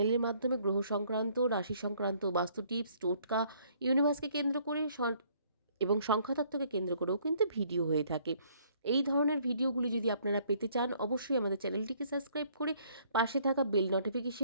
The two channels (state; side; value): inverted; both; correlation -0.63